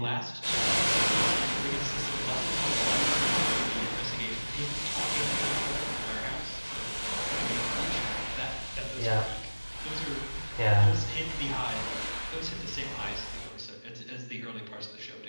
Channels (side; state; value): both; inverted; correlation -1.00